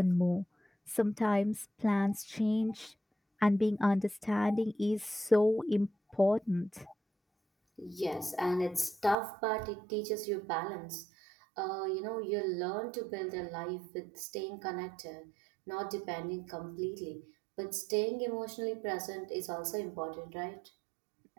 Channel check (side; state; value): left; drops out; at 9.2 s